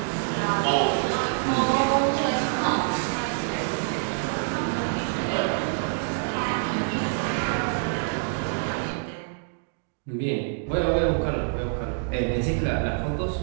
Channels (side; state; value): left; silent; digital silence